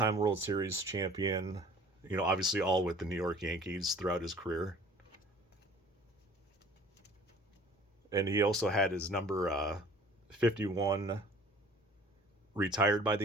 World Series champion, obviously all with the New York Yankees throughout his career. And he also had his number 51 retired by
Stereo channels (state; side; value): normal; both; correlation 0.50